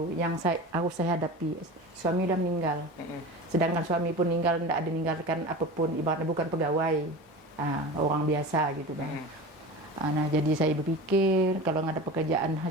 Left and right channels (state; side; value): normal; both; correlation 0.32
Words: yang harus saya hadapi. Suami udah meninggal. Sedangkan suami pun meninggal, tidak ada meninggalkan apapun, ibaratnya bukan pegawai. Orang biasa gitu bang. Nah jadi saya berpikir kalau nggak ada pekerjaan